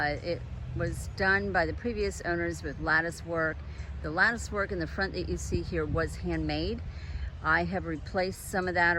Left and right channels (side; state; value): both; identical; correlation 1.00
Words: was done by the previous owners with lattice work. The lattice work in the front that you see here was handmade. I have replaced some of that